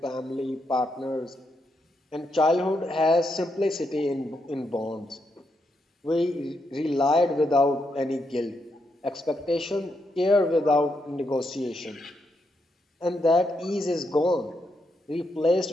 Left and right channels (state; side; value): normal; both; correlation 0.81